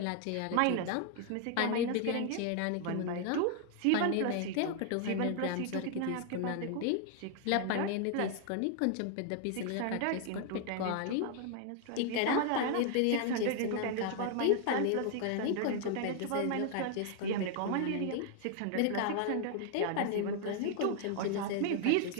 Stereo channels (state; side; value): different; both; correlation 0.00